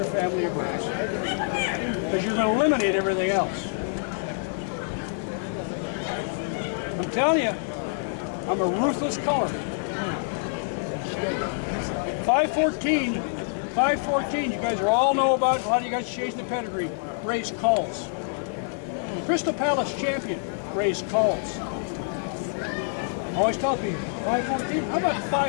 family of birds. Because you're going to eliminate everything else. I'm telling you, I'm a ruthless color. 514, you guys all know about, a lot of you guys chasing the pedigree, raised culls. Crystal Palace champion raised culls. I always tell people, 514? How about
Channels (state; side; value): silent; right; digital silence